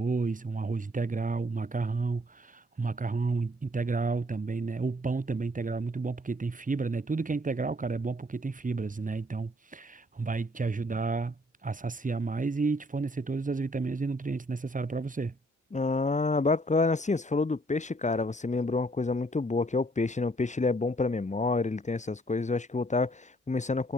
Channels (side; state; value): both; normal; correlation 0.65